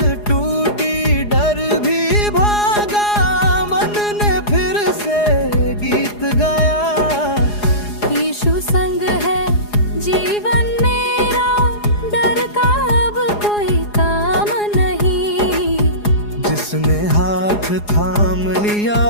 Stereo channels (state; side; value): late; right; 4.8 ms